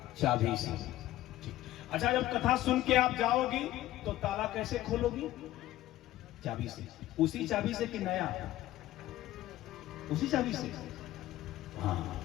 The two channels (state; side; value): quieter; right; 14.9 dB